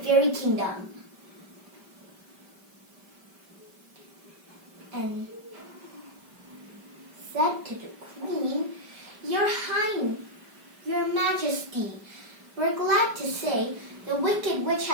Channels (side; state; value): left; late; 5.1 ms